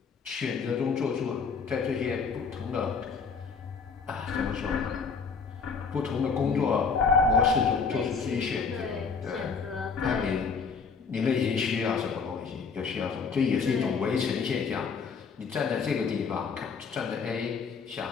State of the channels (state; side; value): quieter; right; 5.3 dB